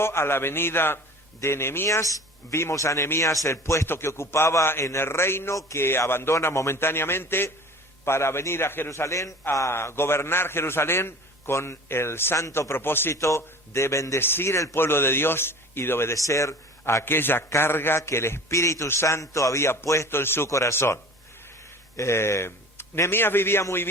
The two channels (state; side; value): normal; both; correlation 0.41